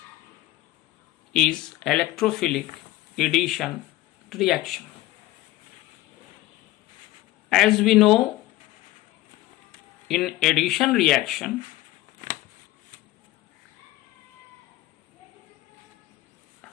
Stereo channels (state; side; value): quieter; right; 16.3 dB